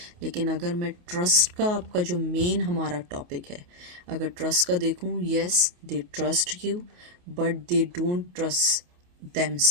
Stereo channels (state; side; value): late; left; 28 ms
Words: लेकिन अगर मैं ट्रस्ट का, आपका जो मेन हमारा टॉपिक है, अगर ट्रस्ट का देखूं, yes they trust you but they don't trust